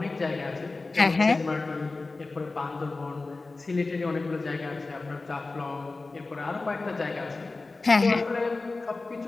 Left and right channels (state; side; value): quieter; right; 3.5 dB